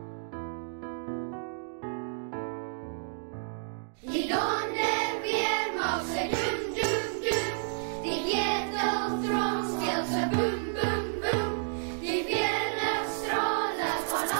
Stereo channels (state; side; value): silent; left; digital silence